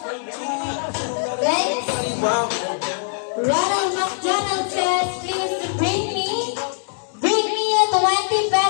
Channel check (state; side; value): silent; right; 64 dB below the other